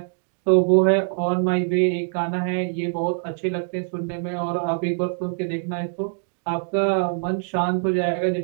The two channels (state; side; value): silent; left; digital silence